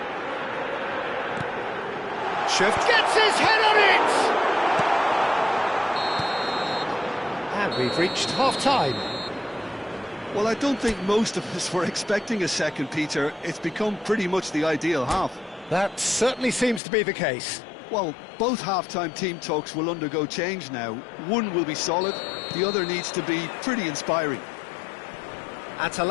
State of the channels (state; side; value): drops out; right; at 16.8 s